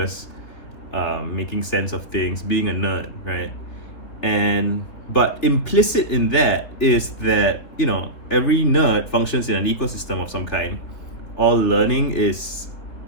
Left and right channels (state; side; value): late; right; 3.7 ms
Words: making sense of things, being a nerd, right? But implicit in that is that every nerd functions in an ecosystem of some kind. All learning is